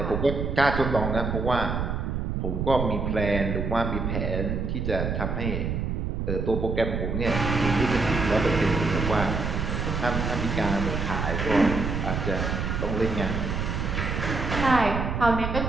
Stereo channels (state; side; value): noise; right; rumble, 2 dB below the sound